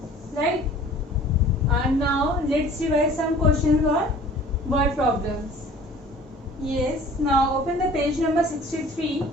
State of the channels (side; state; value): both; normal; correlation 0.48